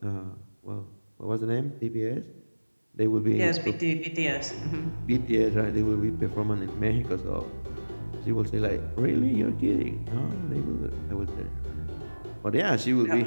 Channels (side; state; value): both; inverted; correlation -1.00